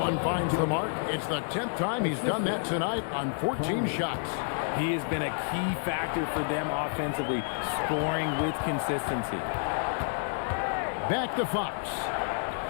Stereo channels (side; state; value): right; silent; 58 dB below the other